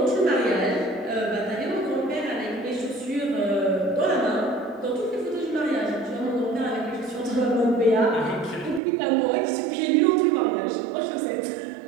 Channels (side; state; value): left; drops out; at 8.8 s